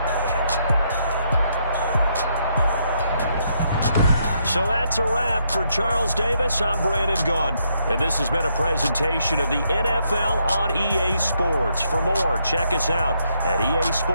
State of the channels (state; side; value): inverted; both; correlation -0.75